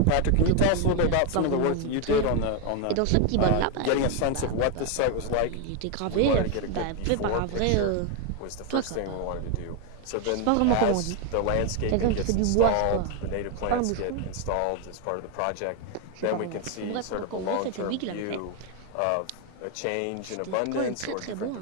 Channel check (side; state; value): both; different; correlation 0.01